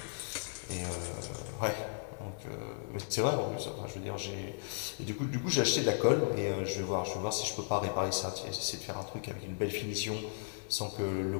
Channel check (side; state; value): right; silent; digital silence